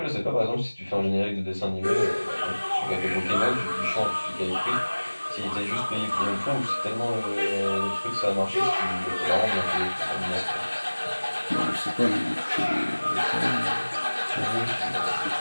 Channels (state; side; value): inverted; both; correlation -1.00